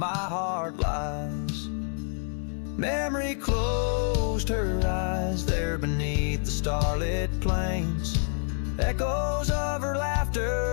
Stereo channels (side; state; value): right; silent; 58 dB below the other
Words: heart lies. Memory closed her eyes there beneath the starlit plains. Echoes of her